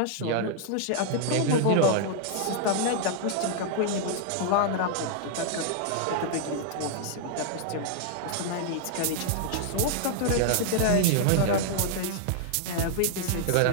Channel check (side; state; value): both; different; correlation -0.01